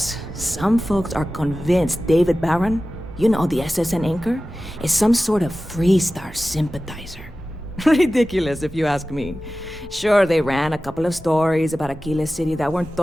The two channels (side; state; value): both; normal; correlation 0.95